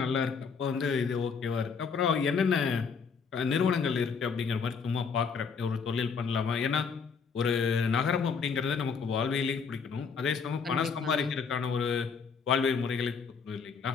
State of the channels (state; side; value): quieter; right; 5.7 dB